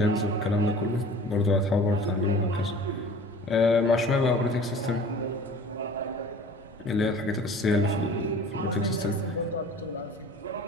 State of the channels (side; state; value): both; normal; correlation 0.44